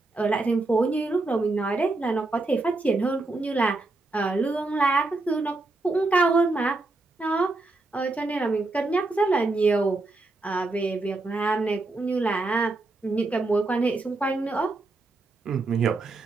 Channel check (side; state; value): left; quieter; 3.2 dB